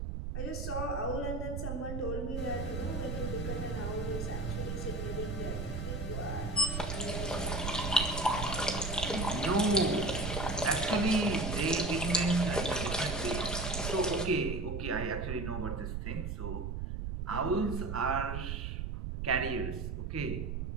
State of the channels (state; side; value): noise; right; rumble, 3 dB below the sound